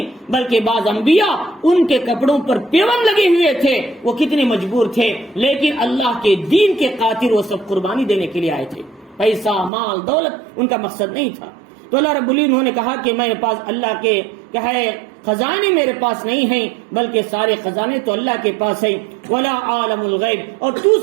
بلکہ بعض انبیاء ان کے کپڑوں پر پیوند لگے ہوئے تھے، وہ کتنے مجبور تھے، لیکن اللہ کے دین کے خاطر وہ سب قربانی دینے کے لیے آئے تھے، پیسہ، مال، دولت ان کا مقصد نہیں تھا۔ تو اللہ رب العزت نے کہا کہ میرے پاس اللہ کے کیا ہے خزانے میرے پاس نہیں ہیں، بلکہ سارے خزانے تو اللہ کے پاس ہیں۔ ولا عالم الغیب، اور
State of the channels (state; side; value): drops out; left; at 9.7 s